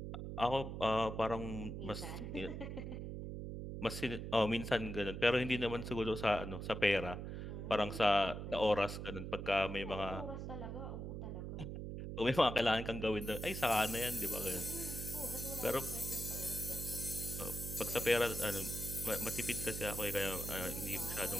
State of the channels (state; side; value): noise; right; hum, 6 dB below the sound